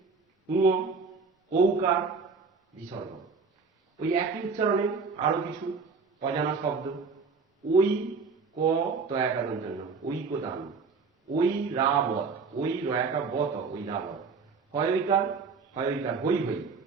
ঔকার বিসর্গ। ওই একই উচ্চারণে আরো কিছু অজানা শব্দ, ওই ক তয়াকার জন্য ঐকদান, ওই রাবত, ওই রয়াকা বত, ওই রাবত। হয়ইকার, হয়ইকার হই হই,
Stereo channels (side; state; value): left; quieter; 4.8 dB